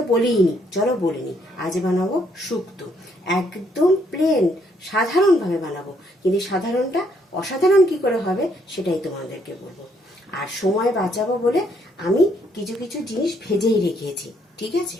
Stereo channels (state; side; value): normal; both; correlation 0.70